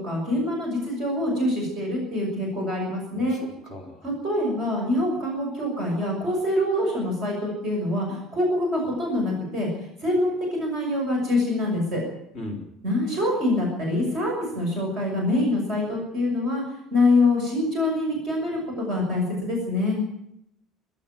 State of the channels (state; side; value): normal; both; correlation 0.50